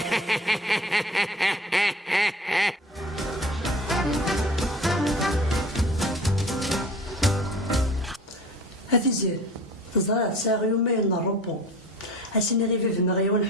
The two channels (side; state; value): both; normal; correlation 0.41